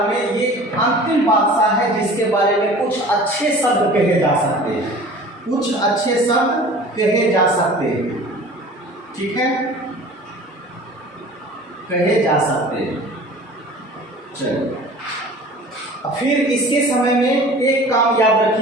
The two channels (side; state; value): both; normal; correlation 0.43